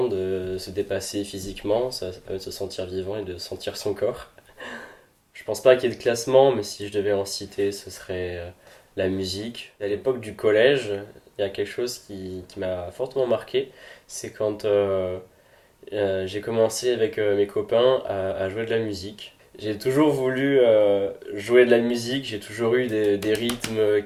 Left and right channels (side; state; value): both; identical; correlation 1.00